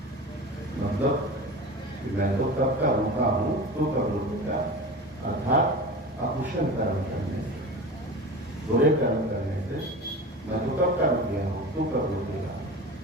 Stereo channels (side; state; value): both; normal; correlation 0.32